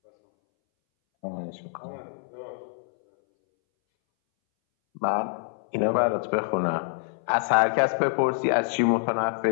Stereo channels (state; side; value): silent; right; 61 dB below the other